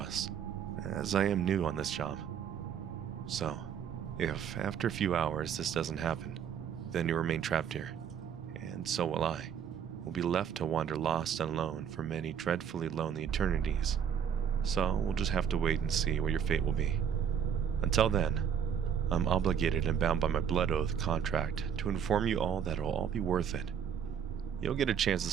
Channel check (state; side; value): quieter; left; 8.0 dB